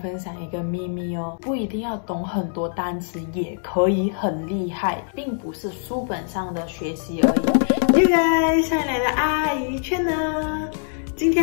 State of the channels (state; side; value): silent; right; digital silence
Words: 享一个秘密哦，不一定要懂很多单词也可以很厉害，并不是书本上的学习而已。Yo guys， 上来的阿姨圈呢？今